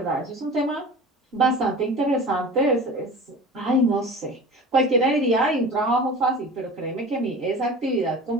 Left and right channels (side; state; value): both; normal; correlation 0.36